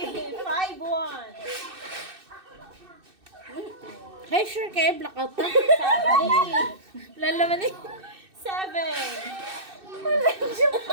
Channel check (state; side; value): late; left; 2.6 ms